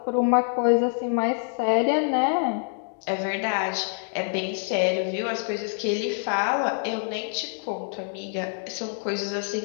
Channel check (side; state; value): right; silent; 61 dB below the other